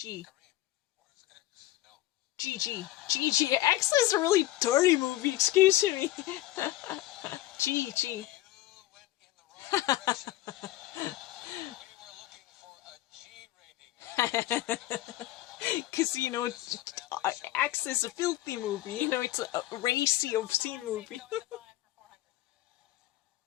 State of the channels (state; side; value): quieter; right; 16.0 dB